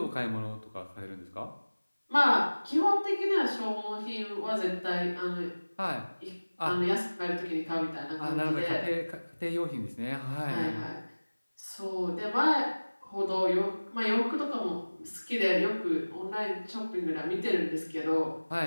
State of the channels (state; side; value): inverted; both; correlation -1.00